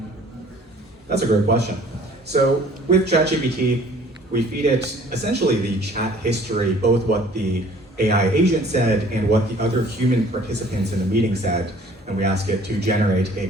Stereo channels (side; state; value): both; normal; correlation 0.53